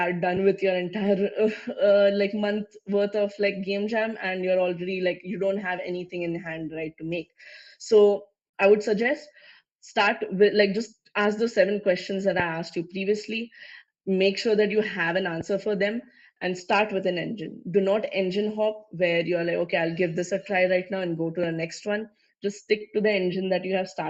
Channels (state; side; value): identical; both; correlation 1.00